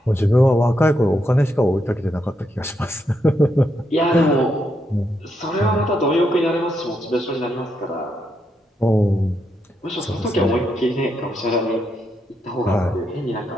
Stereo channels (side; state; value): both; normal; correlation 0.81